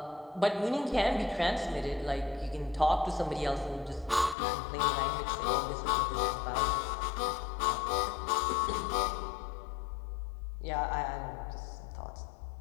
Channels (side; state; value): right; drops out; at 4.4 s